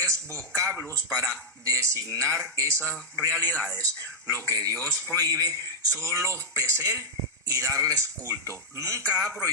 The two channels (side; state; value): both; normal; correlation -0.03